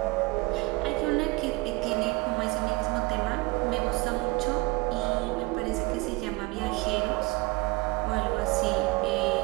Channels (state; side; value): quieter; left; 24.8 dB